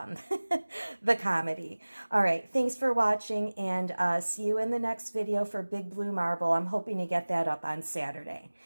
comedy. All right, thanks for watching, and see you in the next video for Big Blue Marble. I'm hoping to get that up on Saturday.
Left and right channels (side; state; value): both; inverted; correlation -1.00